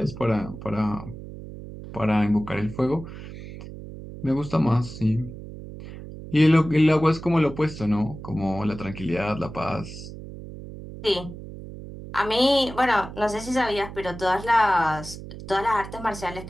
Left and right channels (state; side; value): noise; right; hum, 12 dB below the sound